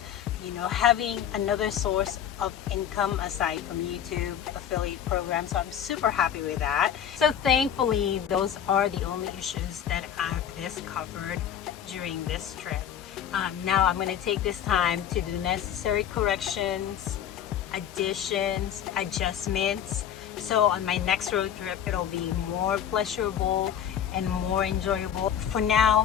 having another source of income aside from YouTube affiliate programs. So I'm super happy with that. So thankfully, those are the only issues that I've discovered during this trip. Now I'm going to take this time to do necessary corrections, additions, adjustments. So on my next road trip, it'll be more pleasurable and more enjoyable. For now,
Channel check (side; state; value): right; quieter; 9.4 dB